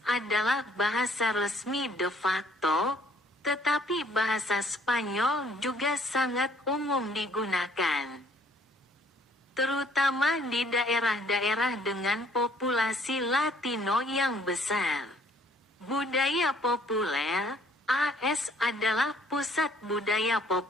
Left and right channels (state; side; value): normal; both; correlation 0.61